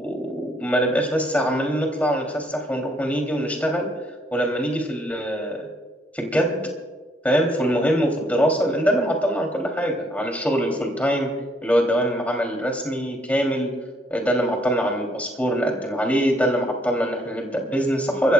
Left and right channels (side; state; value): both; normal; correlation 0.68